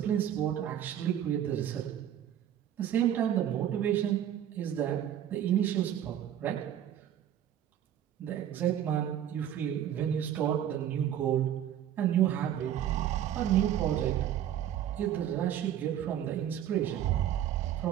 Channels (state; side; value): quieter; left; 10.6 dB